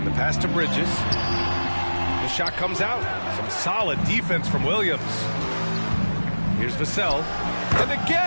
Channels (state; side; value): inverted; both; correlation -1.00